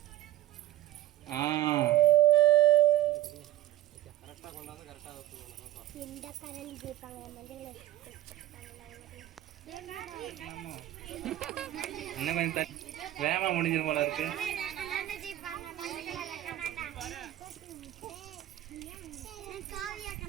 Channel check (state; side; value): quieter; left; 14.2 dB